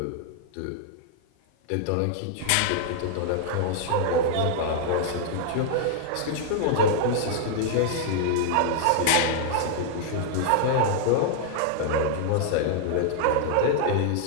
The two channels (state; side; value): different; both; correlation -0.01